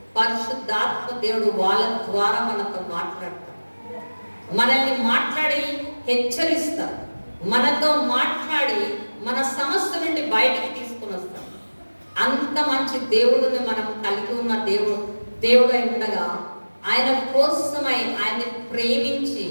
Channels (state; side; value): inverted; both; correlation -1.00